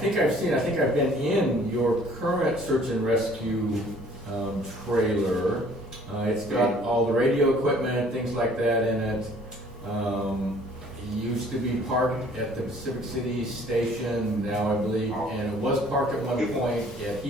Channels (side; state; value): both; normal; correlation 0.56